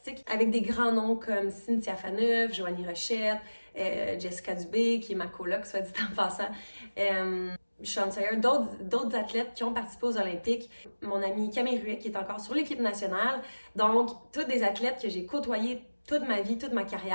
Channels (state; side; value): inverted; both; correlation -1.00